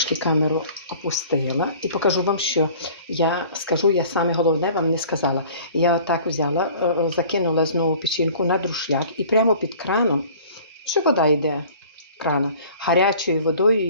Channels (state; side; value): inverted; both; correlation -0.48